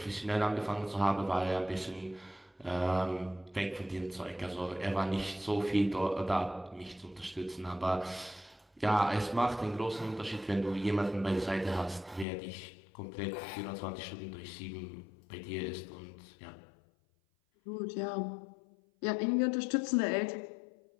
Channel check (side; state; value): right; drops out; at 12.2 s